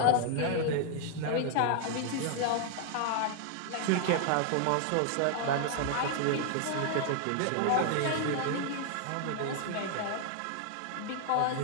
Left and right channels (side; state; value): both; different; correlation 0.00